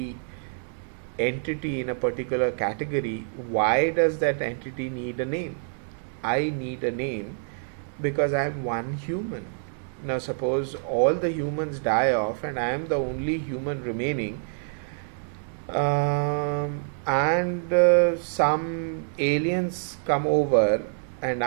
entity in a particular category, why does that entity need a name? I need a name because I am one human. Now suppose all the humans die off and I am the only human remaining, and some aliens come over and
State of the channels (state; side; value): silent; left; digital silence